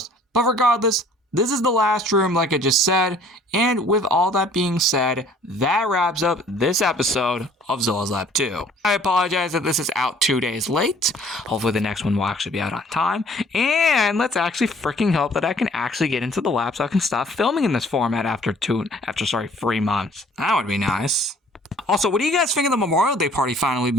But regardless, this is the last room, like I just said, and with all that being said, that wraps up this episode of Zola's Lab 2. I apologize that this is out 2 days late. Hopefully the next one will actually be out on time, and let's actually freaking hope that I can actually get into the lab so I can stop filming in this format after 3 months. That would be nice. Also, what do you guys think of the Memorial Day party finally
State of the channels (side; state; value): both; normal; correlation 0.55